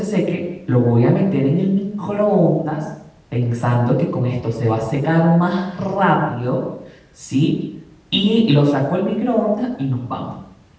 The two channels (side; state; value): both; identical; correlation 1.00